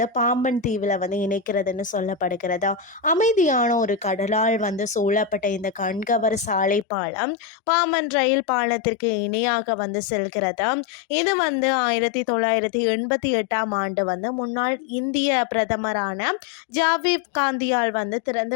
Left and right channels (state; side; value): drops out; right; at 6.9 s